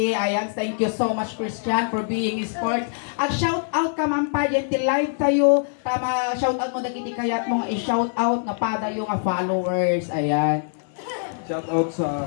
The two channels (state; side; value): silent; right; digital silence